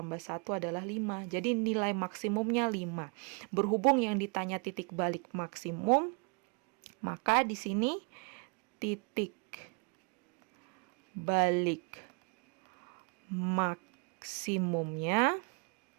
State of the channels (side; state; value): left; quieter; 35.5 dB